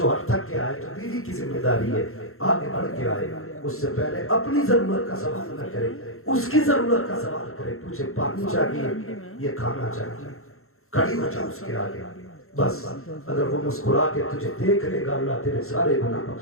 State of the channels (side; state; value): right; late; 0.62 ms